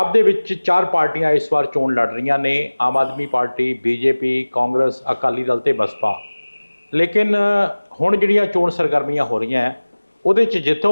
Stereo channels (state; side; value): inverted; both; correlation -1.00